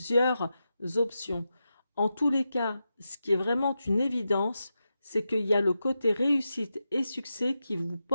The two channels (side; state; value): both; inverted; correlation -0.89